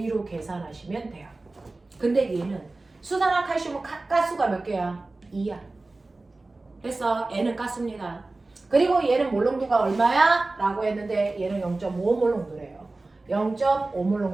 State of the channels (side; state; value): left; quieter; 3.2 dB